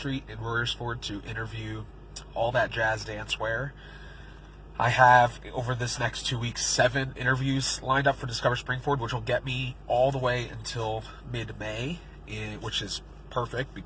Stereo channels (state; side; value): identical; both; correlation 1.00